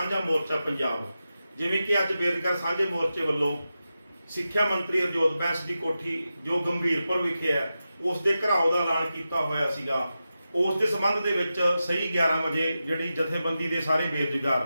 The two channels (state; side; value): inverted; both; correlation -0.91